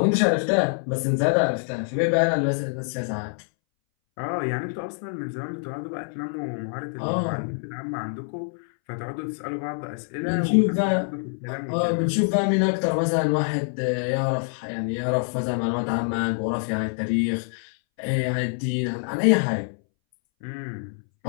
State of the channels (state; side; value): silent; right; 61 dB below the other